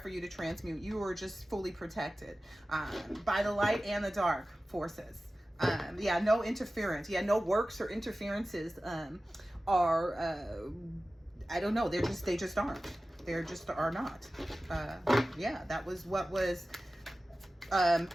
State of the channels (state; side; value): normal; both; correlation 0.96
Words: you to transmute. You are just fully protected by the light and the dark forces. No interference. No works or interferences are I don't know, they just aren't. They just are not. That was what was